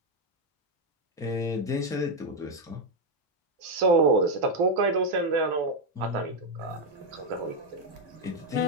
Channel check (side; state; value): both; normal; correlation 0.05